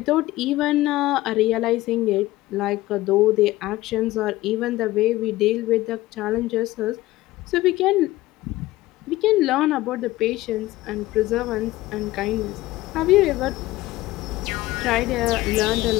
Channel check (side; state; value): right; quieter; 17.5 dB